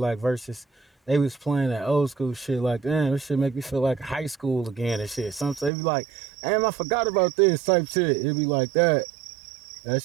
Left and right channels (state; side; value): drops out; left; at 5.7 s